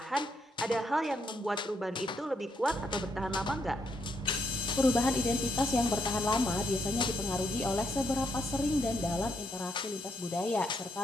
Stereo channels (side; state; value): both; normal; correlation 0.76